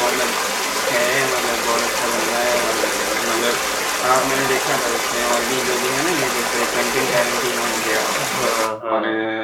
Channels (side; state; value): both; identical; correlation 1.00